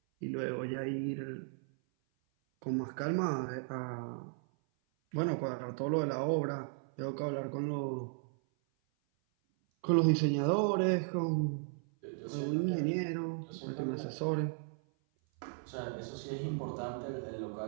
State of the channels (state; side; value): silent; left; 54 dB below the other